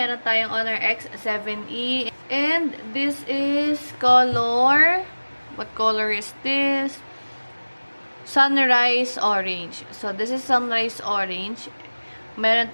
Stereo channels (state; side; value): inverted; both; correlation -1.00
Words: tayong Honor X7E. And this is color. What color is this? Sunrise Orange. So, this is Sunrise Orange. Meron